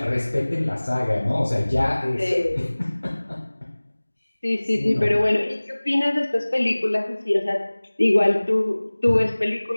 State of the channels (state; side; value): inverted; both; correlation -1.00